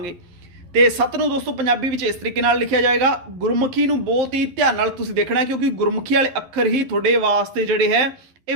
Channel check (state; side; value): late; left; 11 ms